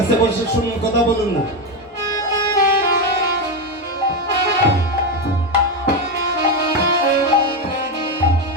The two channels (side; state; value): both; normal; correlation 0.11